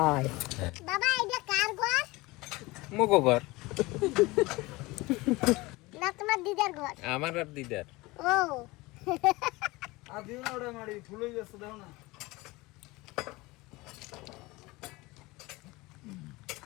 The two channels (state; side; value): quieter; right; 21.9 dB